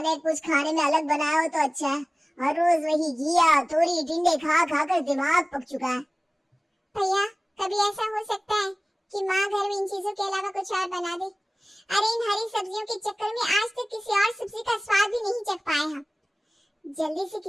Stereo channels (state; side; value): normal; both; correlation 0.98